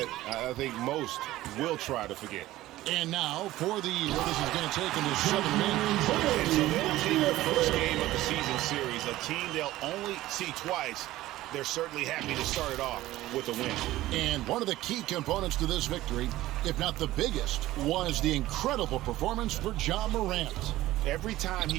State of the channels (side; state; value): left; quieter; 16.1 dB